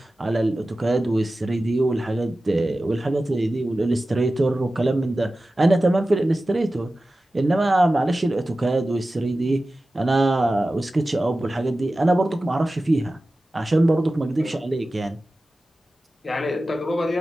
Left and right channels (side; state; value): both; normal; correlation 0.95